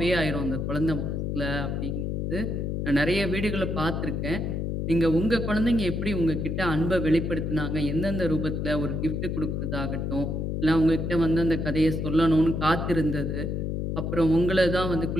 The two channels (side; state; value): left; noise; hum, 1 dB below the sound